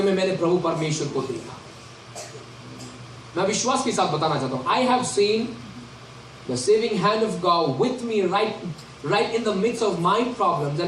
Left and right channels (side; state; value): both; identical; correlation 1.00